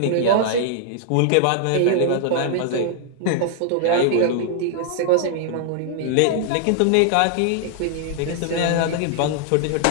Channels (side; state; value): both; different; correlation -0.01